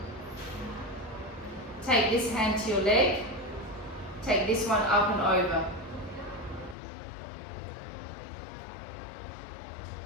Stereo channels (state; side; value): drops out; right; at 6.8 s